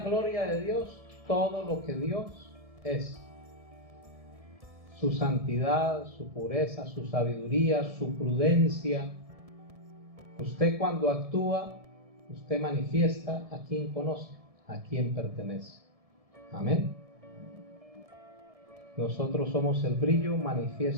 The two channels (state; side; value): late; left; 1.7 ms